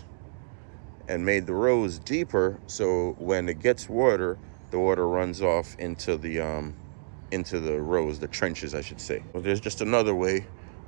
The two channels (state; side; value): silent; left; digital silence